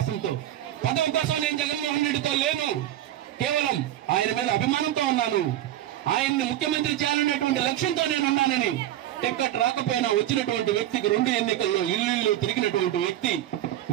పదవి కోసం నేను జగన్మోహన్ రెడ్డితో లేను, కేవలం ఆయన మీద అభిమానంతో ఉన్నాను, ఆయన్ని ముఖ్యమంత్రి చేయాలనేటువంటి లక్ష్యంతో నేను ఉన్నానని టికెట్ రాకపోయినా వచ్చినటువంటి వ్యక్తికి 2 ఎన్నికల్లో ఇల్లు తిరిగినటువంటి వ్యక్తి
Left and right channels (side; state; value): left; quieter; 12.8 dB